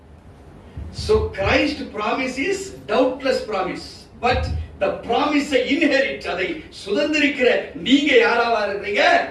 so Christ promise is doubtless promise, but the promise inherit, அதை சுதந்திரிக்கிற நீங்க யாராவா இருக்கீங்க?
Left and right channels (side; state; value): both; identical; correlation 1.00